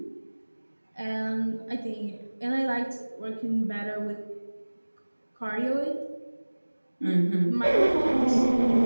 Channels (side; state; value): both; inverted; correlation -1.00